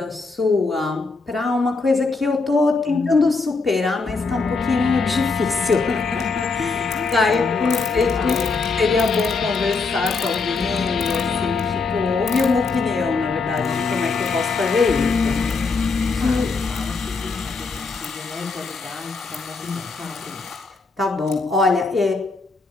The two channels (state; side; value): quieter; right; 4.2 dB